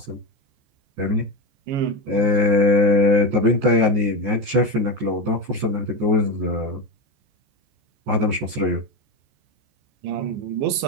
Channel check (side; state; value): left; late; 14 ms